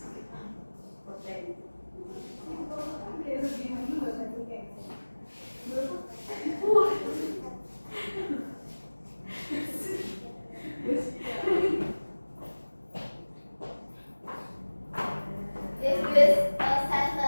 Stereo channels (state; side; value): inverted; both; correlation -1.00